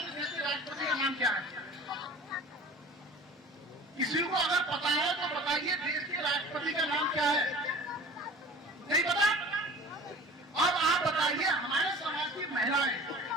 देश के राष्ट्रपति का नाम क्या है? किसी को अगर पता है तो बताइए, देश के राष्ट्रपति का नाम क्या है? नहीं पता? अब आप बताइए, हमारे समाज की महिलाएं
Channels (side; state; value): both; normal; correlation 0.43